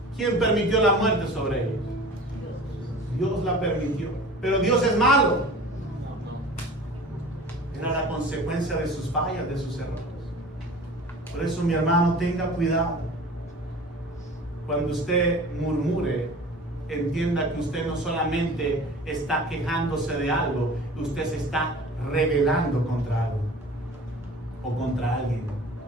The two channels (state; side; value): normal; both; correlation 0.41